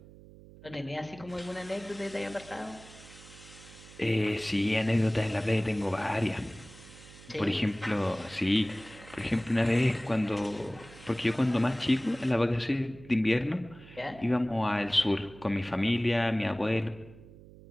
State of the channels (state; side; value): noise; right; hum, 20 dB below the sound